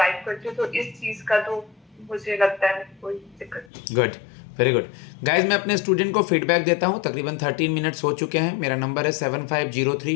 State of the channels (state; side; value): drops out; right; at 3.7 s